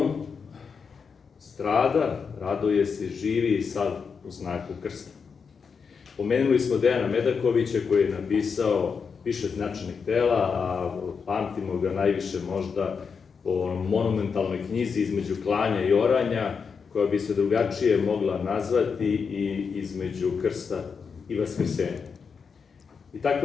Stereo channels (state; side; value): quieter; right; 5.8 dB